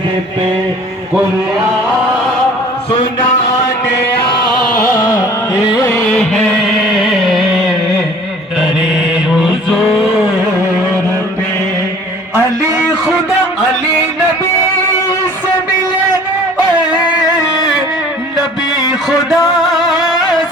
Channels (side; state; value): both; normal; correlation 0.50